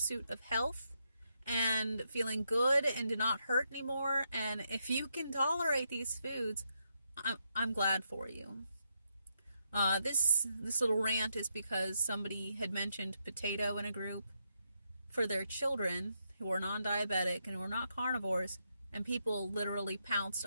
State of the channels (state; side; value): inverted; both; correlation -0.81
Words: of health and feeling good and to not hurt anymore. And if you can tolerate these foods, I'm glad for you. This little rant is because somebody had mentioned potato in a group for their children who are non-diabetic and who are not carnivores, and people literally pounced